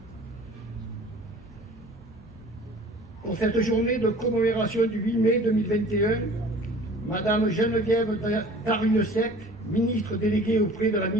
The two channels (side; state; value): both; normal; correlation 0.46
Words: Pour cette journée de commémoration du 8 mai 2021, Madame Geneviève Darrieussecq, ministre déléguée auprès de la